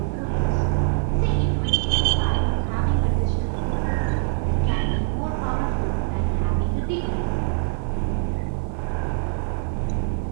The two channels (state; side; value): silent; left; digital silence